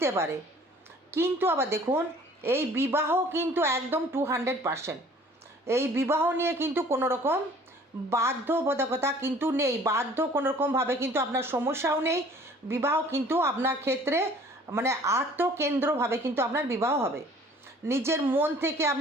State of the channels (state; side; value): normal; both; correlation 0.52